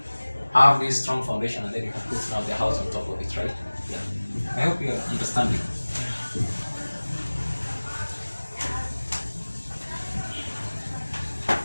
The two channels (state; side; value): inverted; both; correlation -1.00